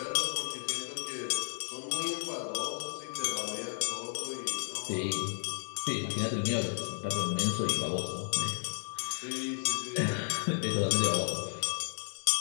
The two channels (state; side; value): silent; right; 56 dB below the other